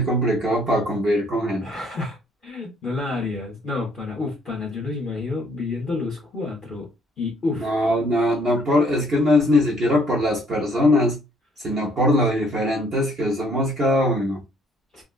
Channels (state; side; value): normal; both; correlation 0.63